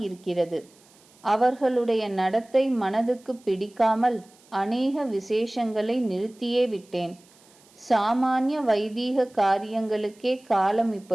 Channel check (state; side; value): noise; right; hiss, 29 dB below the sound